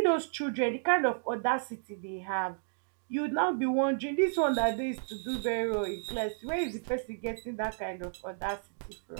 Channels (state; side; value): silent; left; digital silence